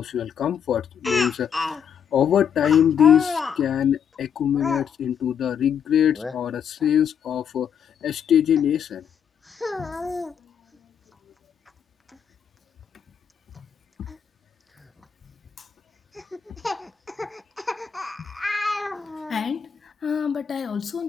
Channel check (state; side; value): quieter; right; 7.8 dB